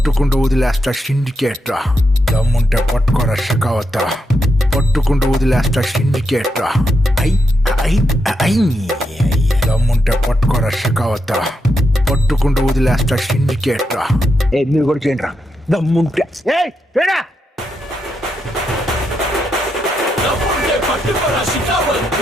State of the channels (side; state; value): both; normal; correlation 0.83